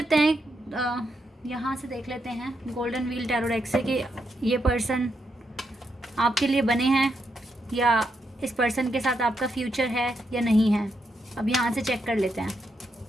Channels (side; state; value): both; normal; correlation 0.81